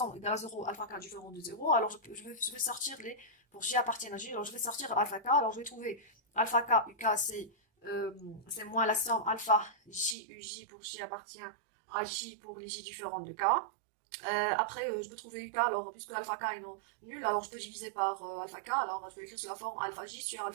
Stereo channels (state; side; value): drops out; left; at 10.2 s